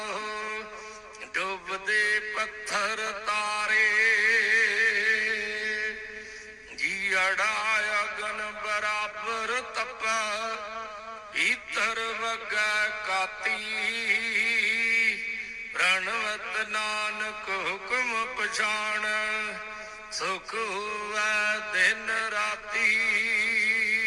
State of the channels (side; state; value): both; identical; correlation 1.00